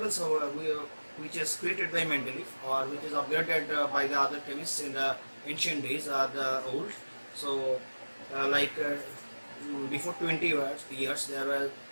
which is created by Mendeleev or which is upgraded by the other chemists in the ancient days are the old. So before 20 years there were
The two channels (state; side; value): inverted; both; correlation -1.00